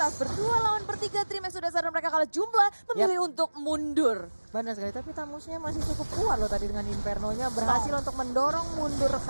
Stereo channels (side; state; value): both; inverted; correlation -1.00